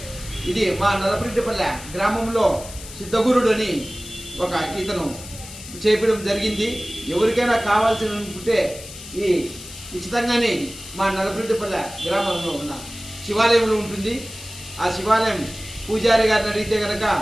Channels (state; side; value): noise; left; hiss, 14 dB below the sound